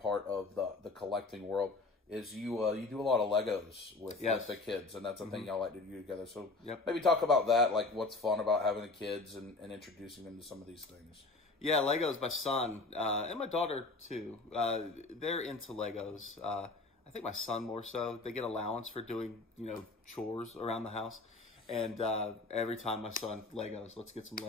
of the collecting world, is you do a lot of Legos with the kids, and that's a thing y'all like to do together. So maybe talk about that, like what's fun about having the kids and introducing them to some of these things. Yeah, Legos, my son, and my daughter too, they're into Legos. I think my son more so. They get allowance for doing, chores around the house. And every time my son, Legos, let's get some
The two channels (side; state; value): right; quieter; 3.4 dB